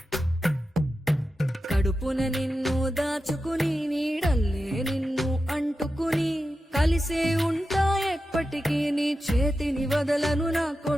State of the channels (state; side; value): normal; both; correlation 0.91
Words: కడుపున నిన్ను దాచుకుని నీడల్లే నిన్ను అంటుకుని కలిసే ఉంటా ఎప్పటికీ నీ చేతిని వదలను నా